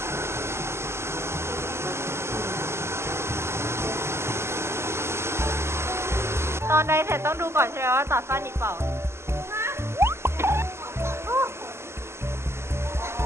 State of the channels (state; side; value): late; left; 0.13 ms